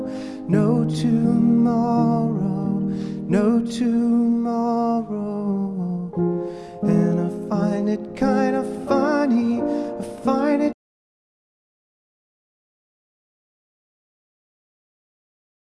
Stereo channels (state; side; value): identical; both; correlation 1.00